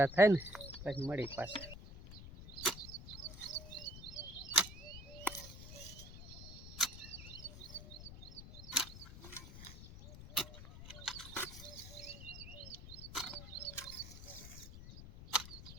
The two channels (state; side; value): noise; left; rumble, 12 dB below the sound